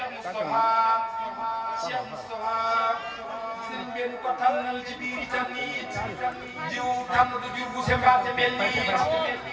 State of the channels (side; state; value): both; identical; correlation 1.00